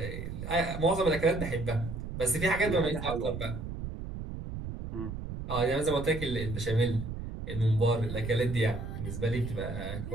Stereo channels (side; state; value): right; noise; rumble, 7 dB below the sound